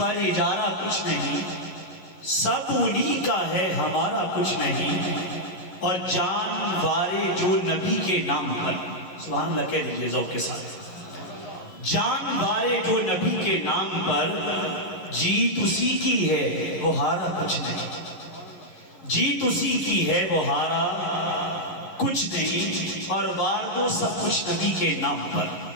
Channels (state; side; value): late; right; 11 ms